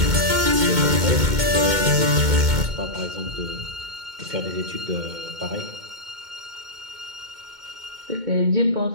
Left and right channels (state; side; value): late; left; 2.2 ms